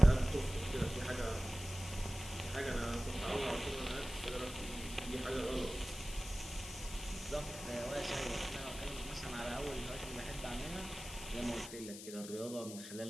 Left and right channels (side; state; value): left; noise; hiss, 11 dB below the sound